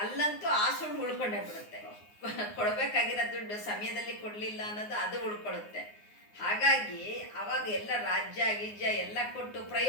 ಆ ಸುಳ್ಳು ಉಳ್ಕೊಂಡೇ ಬಿಡುತ್ತೆ. ಕೊಡಬೇಕಾಗಿರೋ ದುಡ್ಡು ಸಮಯದಲ್ಲಿ ಕೊಡಲಿಲ್ಲ ಅನ್ನೋದು ಅದು ಉಳ್ಕೊಳ್ಳುತ್ತೆ. ಹಾಗಾಗಿ ಅವಾಗ ಎಲ್ಲ ರಾಜ್ಯ ಗಿಜ್ಯ ಎಲ್ಲ ಕೊಟ್ಟು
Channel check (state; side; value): late; right; 9.6 ms